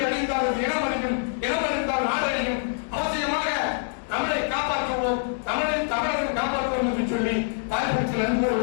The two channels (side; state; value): right; silent; digital silence